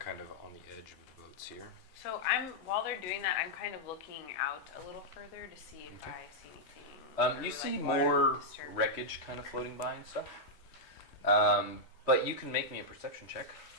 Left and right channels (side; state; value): both; normal; correlation -0.05